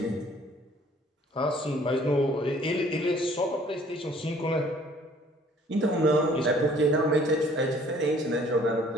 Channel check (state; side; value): normal; both; correlation 0.56